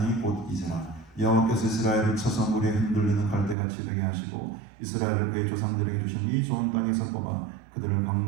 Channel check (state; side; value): drops out; left; at 3.6 s